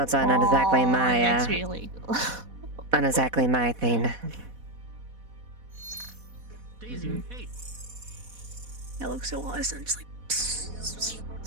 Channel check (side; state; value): left; late; 4.1 ms